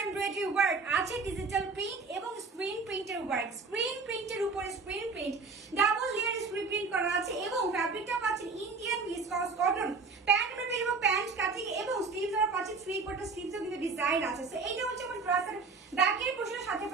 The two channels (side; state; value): left; quieter; 4.4 dB